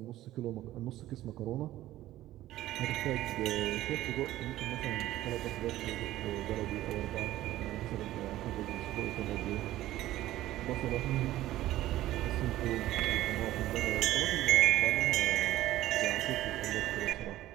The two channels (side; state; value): left; quieter; 14.9 dB